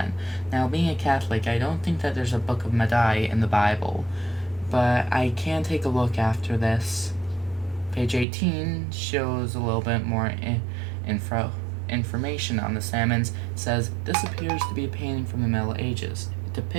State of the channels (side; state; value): left; drops out; at 8.2 s